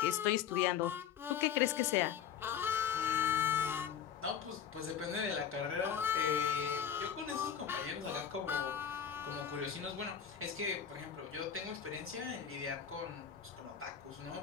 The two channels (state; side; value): quieter; right; 8.4 dB